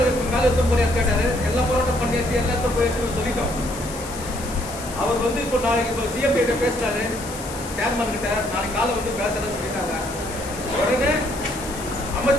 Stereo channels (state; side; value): noise; left; hiss, 13 dB below the sound